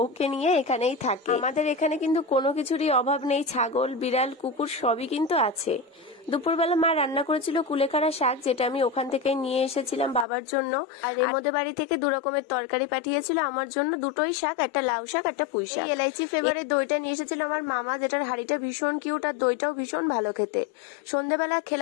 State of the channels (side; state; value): right; drops out; at 10.2 s